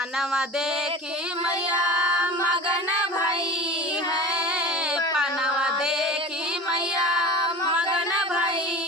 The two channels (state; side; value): normal; both; correlation 0.35